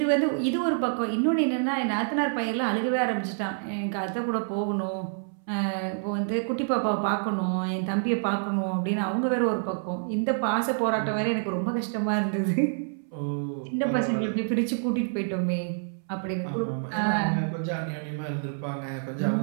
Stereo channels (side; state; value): left; silent; 60 dB below the other